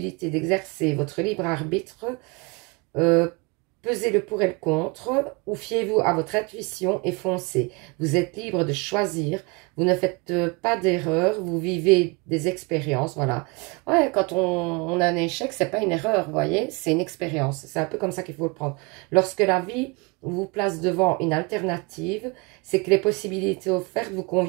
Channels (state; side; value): quieter; left; 28.4 dB